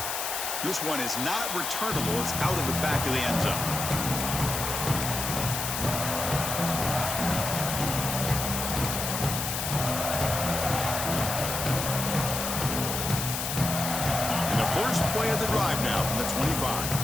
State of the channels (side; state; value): left; noise; hiss, 3 dB below the sound